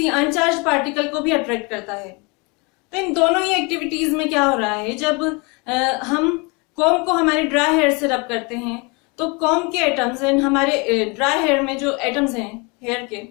अनचार्ज पार्टिकल को भी अट्रैक्ट करता है। तो इन दोनों ही एक्टिविटीज में क्या हो रहा है, जब हम कॉम्ब को हमारे ड्राई हेयर से रब करते हैं तो कॉम्ब के एटम्स एंड हमारे ड्राई हेयर में जो एटम्स हैं हेयर के,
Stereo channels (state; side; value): quieter; right; 29.6 dB